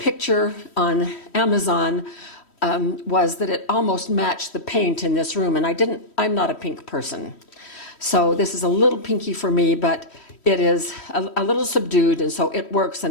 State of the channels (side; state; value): right; late; 3.1 ms